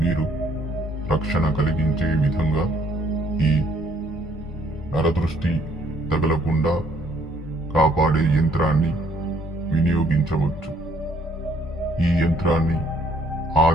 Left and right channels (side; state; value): both; normal; correlation 0.65